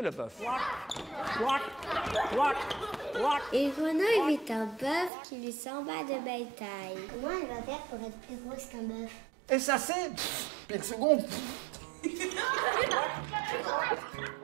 bœuf. Une grenouille vit un bœuf qui lui semble de belle taille. Comment elle va faire pour être plus grosse qu'un bœuf? Et ça c'est... Puis le second...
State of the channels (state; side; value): drops out; left; at 5.1 s